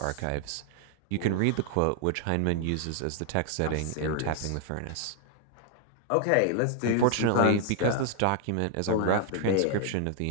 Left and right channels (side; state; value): both; different; correlation 0.00